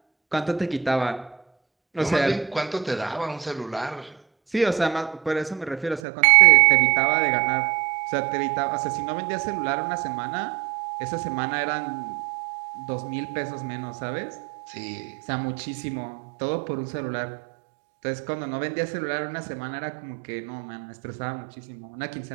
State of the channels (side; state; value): left; drops out; at 6.0 s